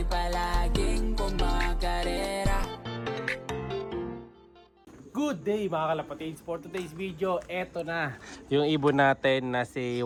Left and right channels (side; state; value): both; identical; correlation 1.00